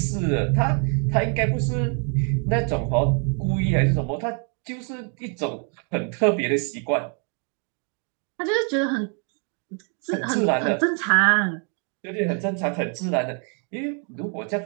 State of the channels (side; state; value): left; quieter; 40.0 dB